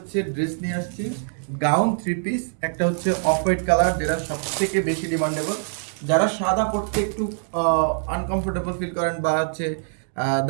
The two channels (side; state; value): left; silent; digital silence